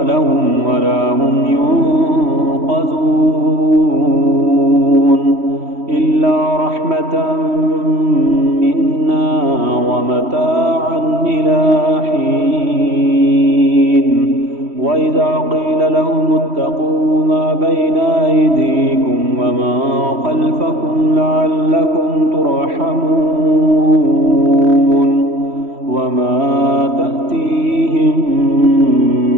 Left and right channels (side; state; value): left; late; 3.1 ms